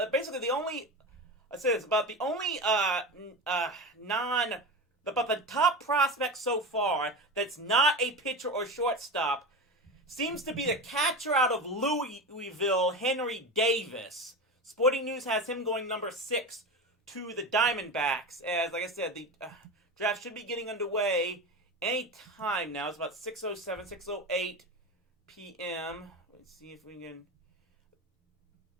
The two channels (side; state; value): both; normal; correlation 0.25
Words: basically the only the top prospect so far that's not a pitcher or shortstop seems to be the catcher out of Louisville, Henry Davis. Sporting News has him going #6 to the Diamondbacks. As, like I said, the draft should be getting underway any time now. It's about 6:07, 6:08 p.m. Let's see if we can...